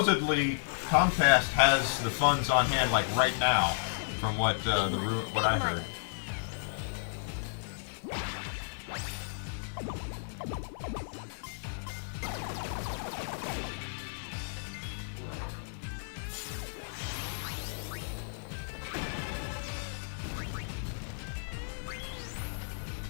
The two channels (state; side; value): silent; right; 56 dB below the other